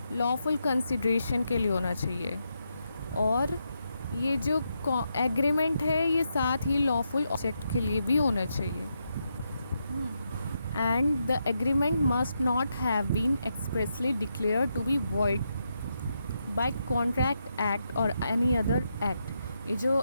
लॉफुल कंसिडरेशन के लिए होना चाहिए, और ये जो एग्रीमेंट है ये साथ ही लॉफुल ऑब्जेक्ट के लिए भी होना चाहिए। And the agreement must not have been expressly declared to be void by contract act और एनी अदर एक्ट। ये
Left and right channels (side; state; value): both; inverted; correlation -0.83